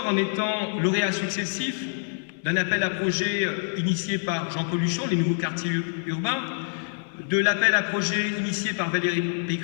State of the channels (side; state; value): right; silent; digital silence